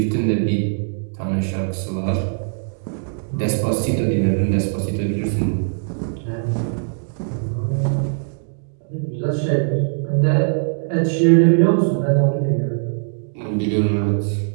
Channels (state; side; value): silent; left; digital silence